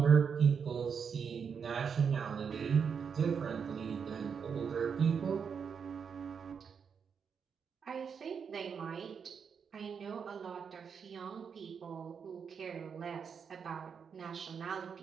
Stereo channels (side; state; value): left; quieter; 6.6 dB